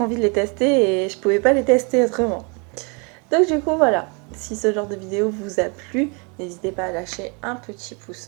envie de les tester et je pouvais pas les tester autrement. Donc du coup, voilà. Si ce genre de vidéo vous a plu, n'hésitez pas à lâcher un petit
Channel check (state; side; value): quieter; left; 33.3 dB